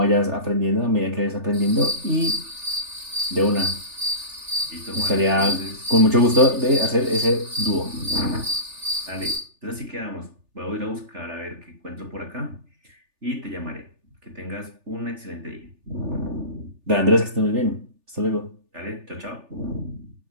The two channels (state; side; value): late; left; 3.4 ms